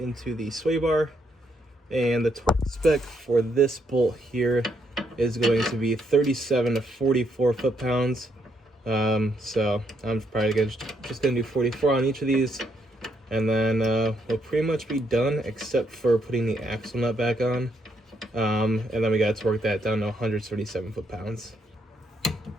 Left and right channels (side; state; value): both; normal; correlation 0.75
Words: the sway bar, and the torque spec for this bolt here is going to be 37 to 44 foot-pounds. So I'm probably just gonna do 44 on each of these, and then we'll pretty much be done except for putting the axle nut back on. And then we gotta torque that down to 137 foot-pounds.